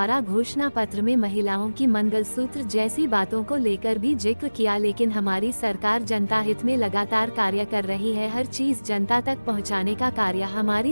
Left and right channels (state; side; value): inverted; both; correlation -1.00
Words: घोषणा पत्र में महिलाओं की मंगलसूत्र जैसी बातों को लेकर भी जिक्र किया, लेकिन हमारी सरकार जनता हित में लगातार कार्य कर रही है। हर चीज जनता तक पहुँचाने का कार्य हमारी